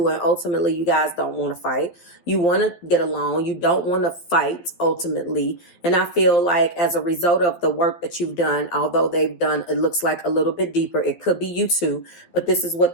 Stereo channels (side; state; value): right; late; 12 ms